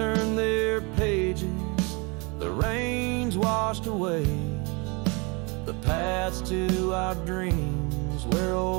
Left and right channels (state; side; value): quieter; left; 29.8 dB